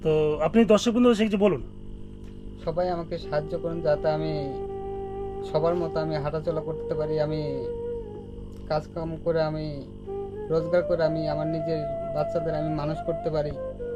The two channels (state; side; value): identical; both; correlation 1.00